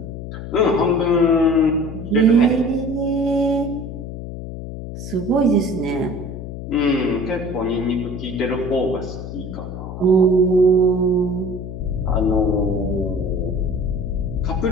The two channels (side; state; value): left; noise; hum, 9 dB below the sound